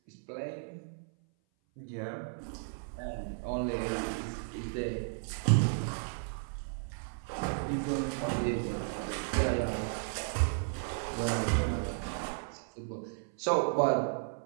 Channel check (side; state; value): left; silent; 55 dB below the other